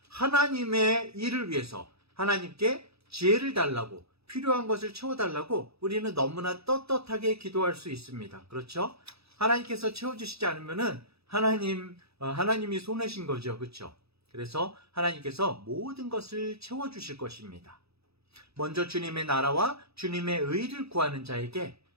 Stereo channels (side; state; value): left; late; 0.78 ms